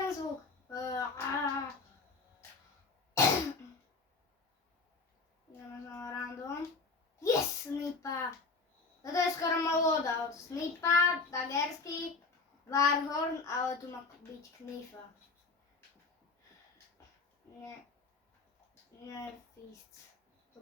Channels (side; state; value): right; quieter; 4.0 dB